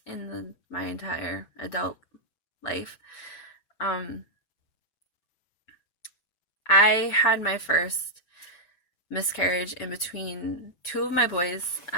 in my entire adult life. I had my first miscarriage in between two of my boys,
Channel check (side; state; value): right; late; 6.1 ms